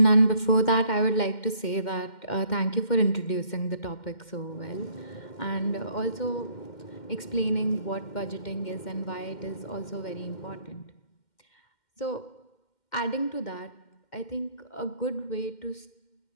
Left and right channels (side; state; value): right; late; 2.1 ms